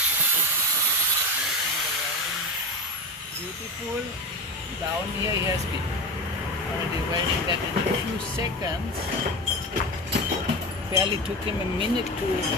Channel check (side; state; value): both; normal; correlation 0.25